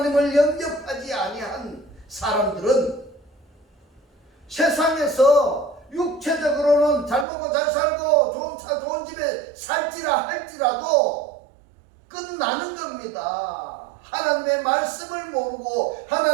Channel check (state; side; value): drops out; left; at 7.2 s